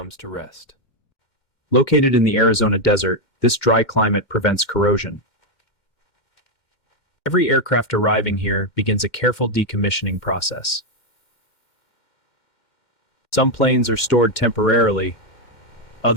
to rest. Located in the Arizona desert, this dry climate prevents corrosion. Every aircraft arriving here begins a careful decommissioning process. Some planes are stored temporarily,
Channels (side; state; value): right; late; 2.1 ms